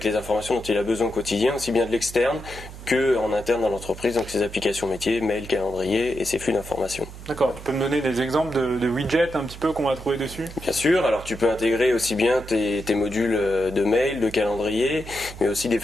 les informations dont il a besoin au quotidien, aussi bien de l'externe que en interne dans l'entreprise, donc ses applications métiers, mail, calendrier et ses flux d'informations. D'accord, tu peux me donner des exemples de widgets un petit peu qu'on va trouver dessus? Bien sûr, alors tu peux intégrer aussi bien tes modules de mail, de calendrier, mais aussi des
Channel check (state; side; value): noise; right; hum, 14 dB below the sound